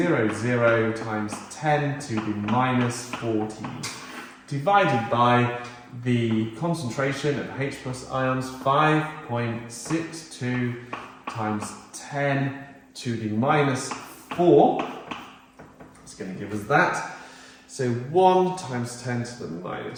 times 10 to the minus 14, divided by the concentration of H plus ions, 5.62 times 10 to the minus 4. It's going to give us that. So 1 times 10 to the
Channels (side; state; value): both; identical; correlation 1.00